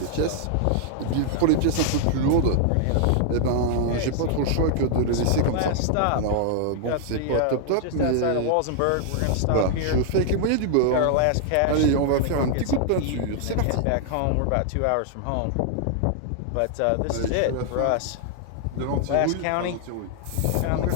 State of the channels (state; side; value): different; both; correlation 0.00